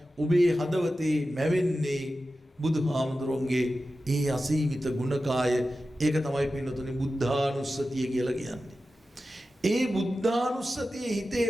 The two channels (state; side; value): normal; both; correlation 0.93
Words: ඔබේ හදවතේ මැවෙන්නේ බුදුහාමුදුරන්ගේ ඒ අසීමිත ගුණකාය. ඒක තමයි පින්නතුනි බුද්ධානුස්සතිය කියලා කියන්නේ. ඒ බුද්ධානුස්සතිය හිතේ